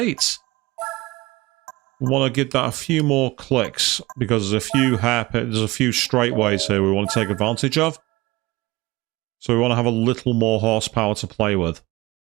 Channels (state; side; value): quieter; left; 21.1 dB